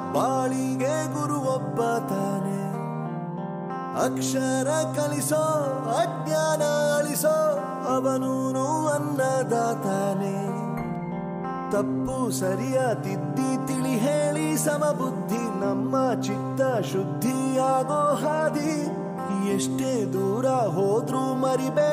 ಬಾಳಿಗೆ ಗುರು ಒಬ್ಬ ತಾನೆ. ಅಕ್ಷರ ಕಲಿಸೋ, ಅಜ್ಞಾನ ಅಳಿಸೋ, ಅವನೂನು ಅನ್ನದಾತಾನೆ. ತಪ್ಪು ಸರಿಯ ತಿದ್ದಿ ತಿಳಿ ಹೇಳಿ ಸಮಬುದ್ಧಿ, ನಮ್ಮ ಚಿತ್ತ ಶುದ್ಧಿಯಾಗೋ ಹಾದಿ. ಎಷ್ಟೇ ದೂರ ಹೋದ್ರೂ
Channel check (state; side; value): identical; both; correlation 1.00